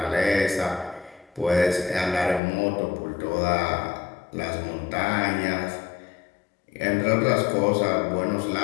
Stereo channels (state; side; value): drops out; right; at 2.4 s